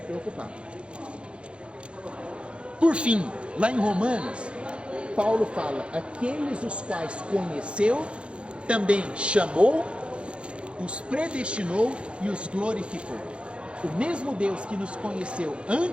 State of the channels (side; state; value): left; late; 0.058 ms